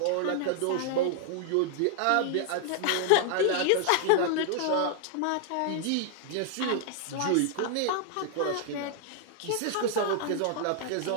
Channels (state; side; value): different; both; correlation 0.00